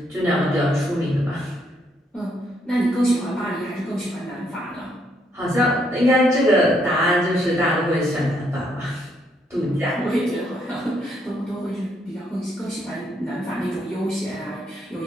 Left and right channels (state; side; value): normal; both; correlation 0.73